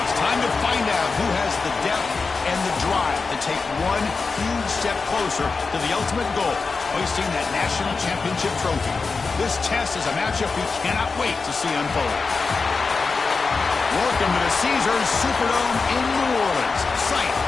It's time to find out who has the depth and the drive to take one huge step closer to the ultimate goal, hoisting that national championship trophy. This test is a matchup we cannot wait to see unfold. Welcome to the Caesars Superdome in New Orleans, site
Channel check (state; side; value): quieter; right; 4.4 dB